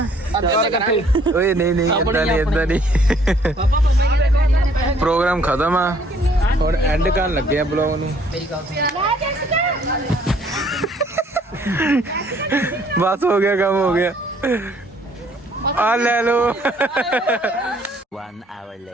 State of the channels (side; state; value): both; normal; correlation 0.62